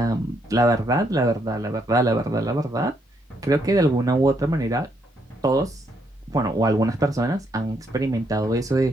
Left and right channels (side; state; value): both; normal; correlation 0.74